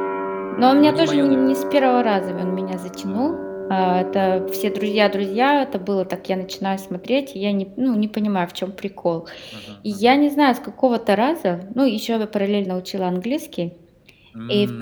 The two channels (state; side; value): identical; both; correlation 1.00